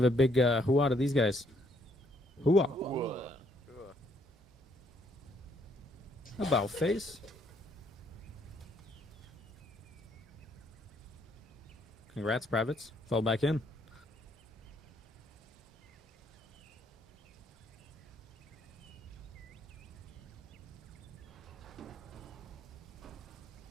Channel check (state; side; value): normal; both; correlation 0.69